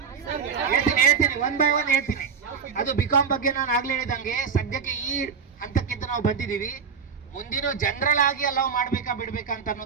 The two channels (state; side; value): quieter; left; 6.3 dB